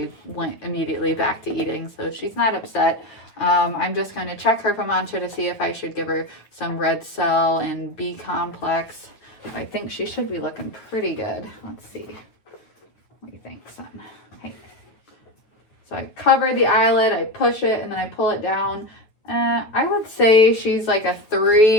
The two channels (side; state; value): right; late; 9.2 ms